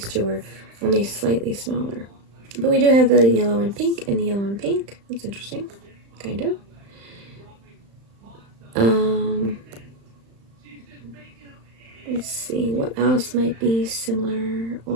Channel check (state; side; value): late; left; 35 ms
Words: 2 are only slightly smaller. But we do have the yellow and pink and the yellow and pink. That's interesting. Kind of. Let's see, what else might be similar